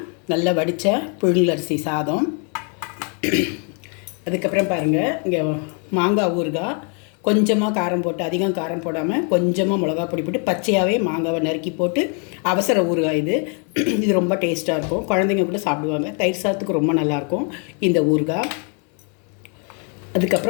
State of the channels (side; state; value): right; quieter; 39.2 dB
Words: நல்லா வடித்த புழுங்கலரிசி சாதம், அதுக்கப்புறம் பாருங்கள், இங்கே மாங்காய் ஊறுகாய், கொஞ்சமாக காரம் போட்டு, அதிகம் காரம் போடாமல் கொஞ்சமாக மிளகா பொடி போட்டு பச்சையாகவே மாங்காவை நறுக்கி போட்டு அவசர ஊறுகாய் இது ரொம்ப டேஸ்ட்டாக இருக்கும். குழந்தைங்க கூட சாப்பிடுவாங்க. தயிர் சாதத்துக்கு ரொம்ப நல்லாயிருக்கும் இந்த ஊறுகாய்.